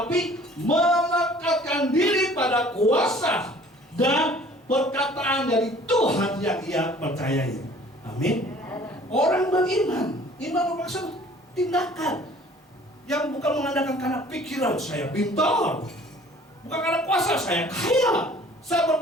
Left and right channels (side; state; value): both; normal; correlation 0.52